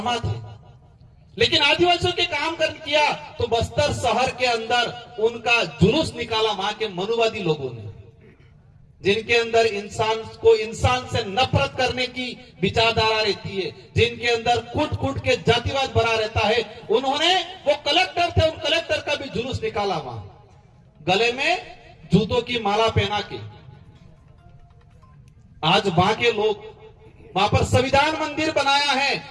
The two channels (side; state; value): both; identical; correlation 1.00